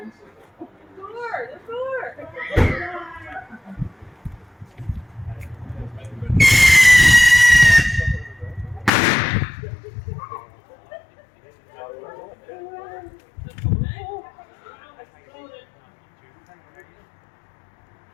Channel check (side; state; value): right; drops out; at 8.9 s